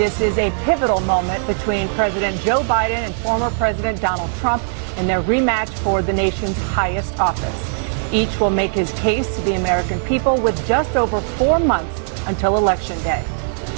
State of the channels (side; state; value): left; silent; 58 dB below the other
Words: is a pivotal moment between President Joe Biden and former President Donald Trump in their rematch for the nation's highest office. Each will make his case to the American people with just over 4 months until Election Day.